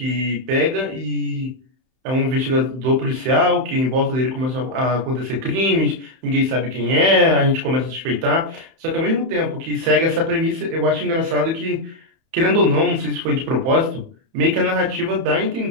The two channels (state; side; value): late; left; 31 ms